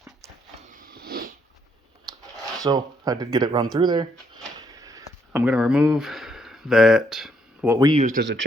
So I did get it run through there. I'm going to remove that, what we used as a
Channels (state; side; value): normal; both; correlation 0.72